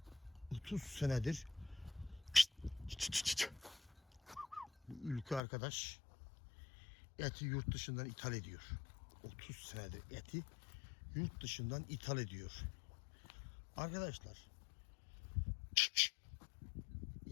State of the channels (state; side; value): drops out; right; at 5.4 s